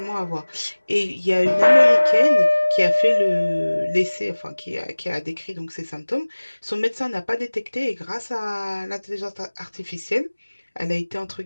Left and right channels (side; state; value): both; inverted; correlation -1.00